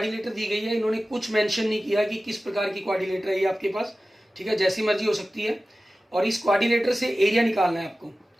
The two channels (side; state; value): both; normal; correlation 0.95